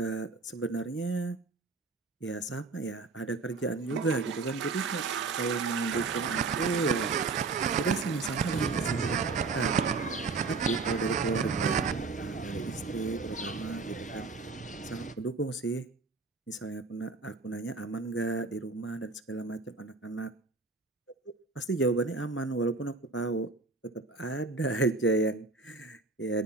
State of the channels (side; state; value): left; quieter; 4.0 dB